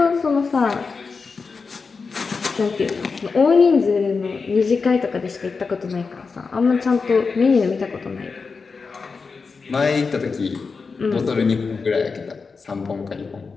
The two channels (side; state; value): right; quieter; 4.8 dB